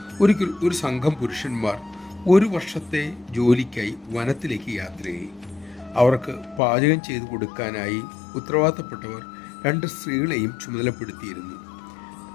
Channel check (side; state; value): right; drops out; at 6.6 s